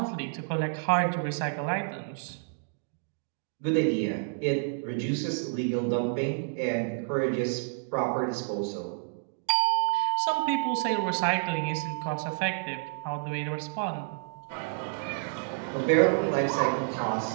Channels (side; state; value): left; silent; digital silence